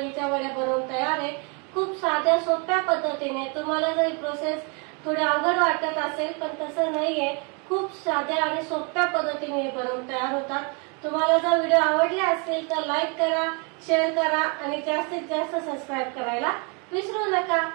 वड्या बनवून तयार आहे. खूप साध्या सोप्या पद्धतीने. तुम्हाला जर ही प्रोसेस थोडी अवघड वाटत असेल पण तसं नाहीये, खूप साध्या आणि सोप्या पद्धतीने हे बनवून तयार होतात. तुम्हाला जर व्हिडिओ आवडले असेल तर लाईक करा, शेअर करा आणि जास्तीत जास्त सबस्क्राईब करायला विसरू नका.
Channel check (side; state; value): left; quieter; 34.4 dB